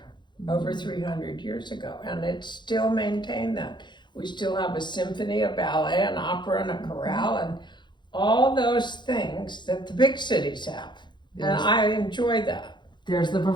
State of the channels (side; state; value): right; late; 0.22 ms